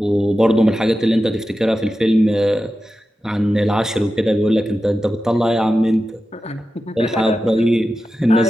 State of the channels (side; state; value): both; normal; correlation 0.92